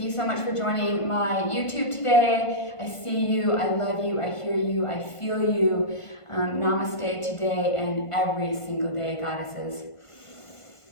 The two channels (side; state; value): right; late; 1.5 ms